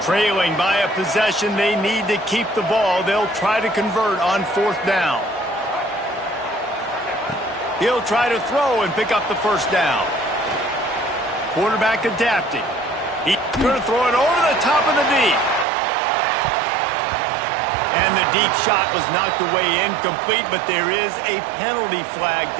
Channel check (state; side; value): drops out; left; at 15.7 s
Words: Trailing by a possession, they need to keep the ball. They'll try to convert on fourth down. He'll try to throw and pick up the first down. Quarterback adapting. He's going to throw it over the top of the D. And the deep shot was knocked away incomplete, but there is a penalty flag